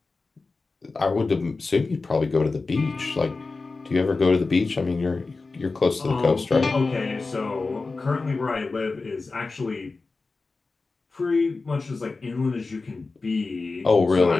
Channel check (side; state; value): right; quieter; 3.8 dB